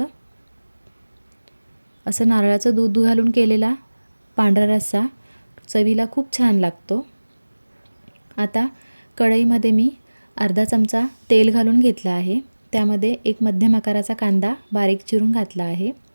असं नारळाचं दूध घालून केलेला पांढरा रस्सा चवीला खूप छान लागतो। आता कढईमध्ये मी अर्धा चमचा तेल घालून घेतला आहे। त्यामध्ये एक मध्यम आकाराचा कांदा बारीक चिरून घातला आहे,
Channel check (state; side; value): inverted; both; correlation -1.00